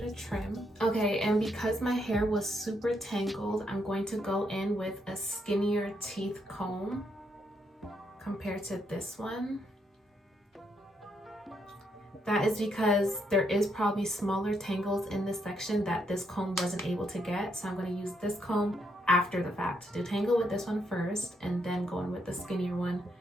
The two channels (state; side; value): normal; both; correlation 0.76